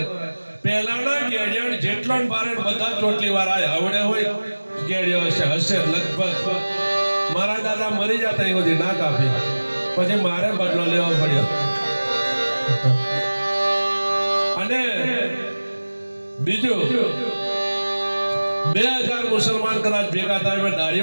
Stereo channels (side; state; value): both; inverted; correlation -1.00